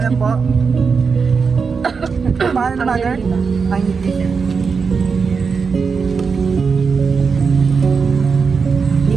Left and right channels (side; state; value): left; quieter; 5.4 dB